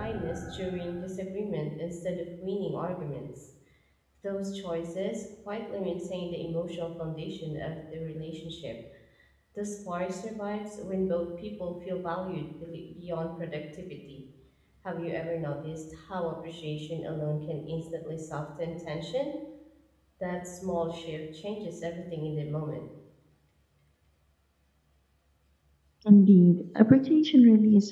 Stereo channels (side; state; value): both; identical; correlation 1.00